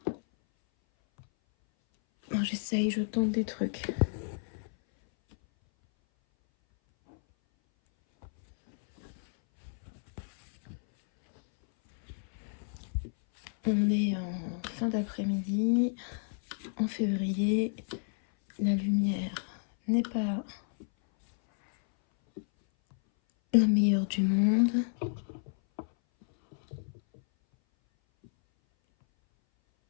J'essaye, je tente des trucs. On est en fin d'après-midi, en février. La lumière n'est pas la meilleure du monde.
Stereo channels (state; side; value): silent; right; 57 dB below the other